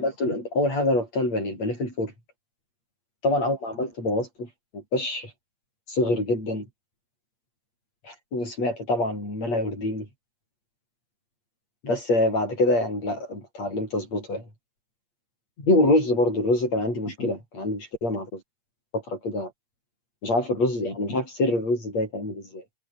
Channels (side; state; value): right; late; 8.6 ms